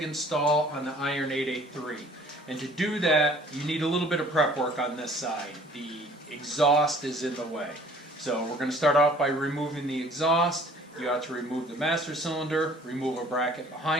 install on the Iron 883. And to do that, you need a little bit of prep work on this side. The exhaust is in the way. So we're going to start off by removing the exhaust. You have to remove the master cylinder, remove a bracket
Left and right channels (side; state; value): both; normal; correlation 0.53